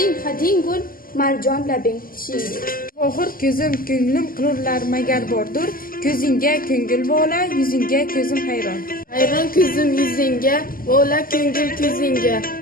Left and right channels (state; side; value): late; right; 0.42 ms